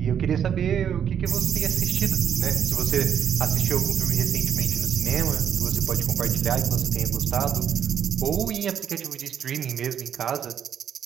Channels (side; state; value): left; quieter; 8.7 dB